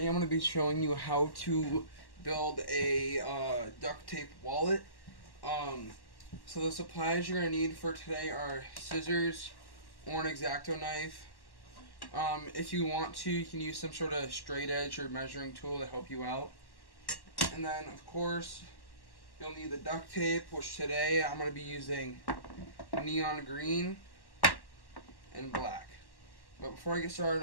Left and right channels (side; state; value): right; late; 1.1 ms